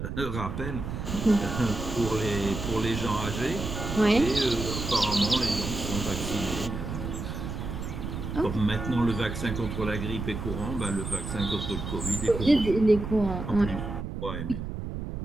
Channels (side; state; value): right; noise; rumble, 5 dB below the sound